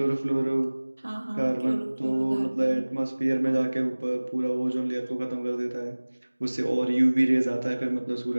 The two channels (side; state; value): both; inverted; correlation -1.00